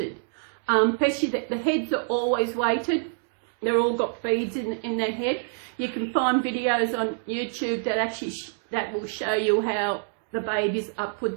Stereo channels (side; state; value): left; silent; digital silence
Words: Especially the heads are always weighted. They're all got beads in their head. You can find videos on YouTube that actually that will show you how the babies are